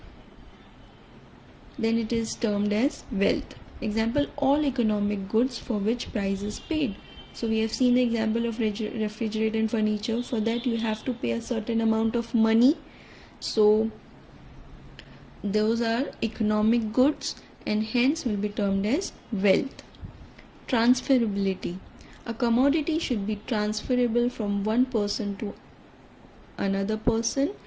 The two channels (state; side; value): identical; both; correlation 1.00